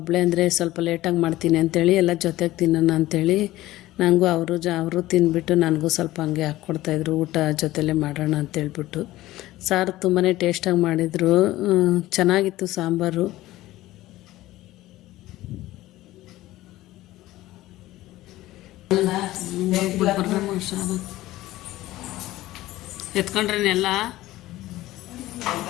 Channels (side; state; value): right; quieter; 16.5 dB